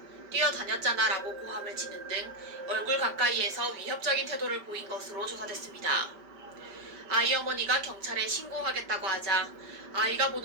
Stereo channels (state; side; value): late; left; 5.1 ms